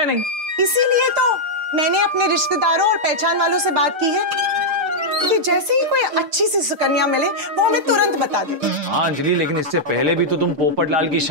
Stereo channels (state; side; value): late; left; 6.6 ms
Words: नहीं। इसीलिए तो मैंने अपने रिश्तेदारों और पहचान वालों से बात की है कि जैसे ही कोई अच्छी सी सुकन्या मिले वो हमें तुरंत बता दे। हाँ अंजलि, लेकिन इससे पहले भी तो तुम पोपट लाल की